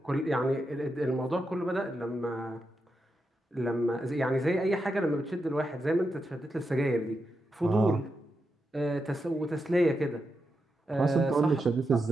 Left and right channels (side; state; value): both; normal; correlation 0.86